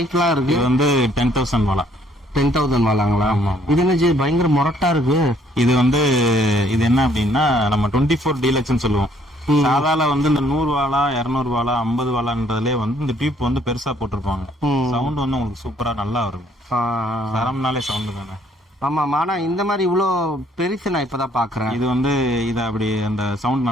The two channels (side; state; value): both; normal; correlation 0.64